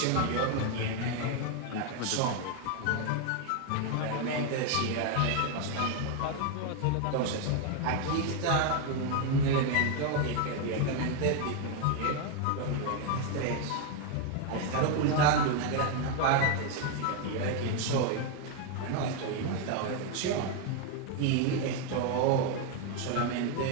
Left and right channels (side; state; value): both; different; correlation 0.01